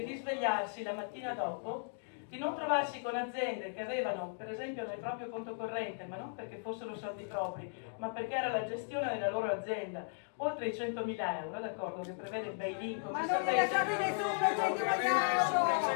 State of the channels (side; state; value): right; silent; digital silence